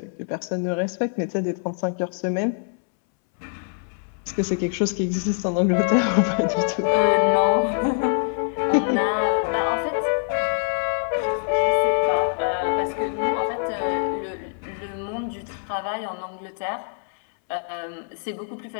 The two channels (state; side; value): silent; right; 62 dB below the other